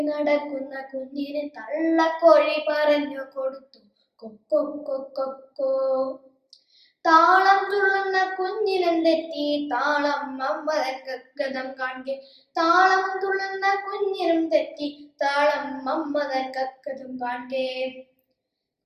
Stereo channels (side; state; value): both; identical; correlation 1.00